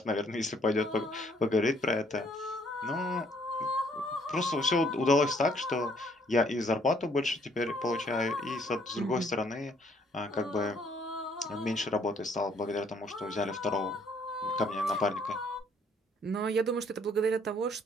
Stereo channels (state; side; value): normal; both; correlation 0.65